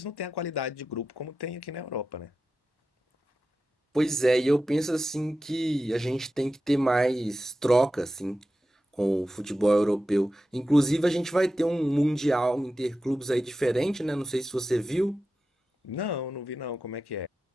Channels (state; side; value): normal; both; correlation 0.92